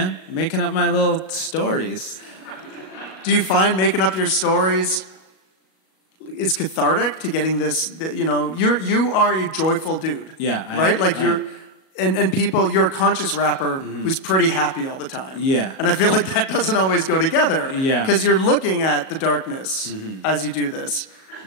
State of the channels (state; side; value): late; right; 37 ms